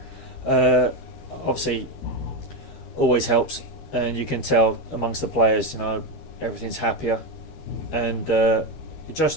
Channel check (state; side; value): late; right; 13 ms